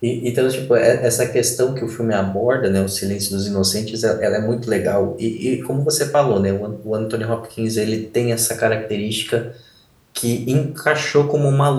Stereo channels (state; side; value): identical; both; correlation 1.00